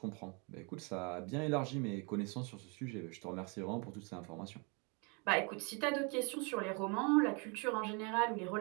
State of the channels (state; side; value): quieter; left; 33.1 dB